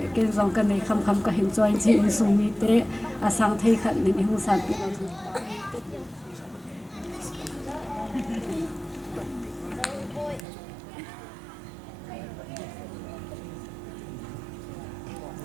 dòng cái này khăm cái hình cho anh chị in sung mi tế sang thấy khẩn nên không sản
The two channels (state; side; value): drops out; left; at 10.5 s